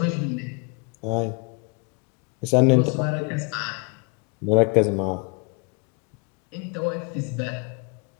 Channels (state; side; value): quieter; right; 33.6 dB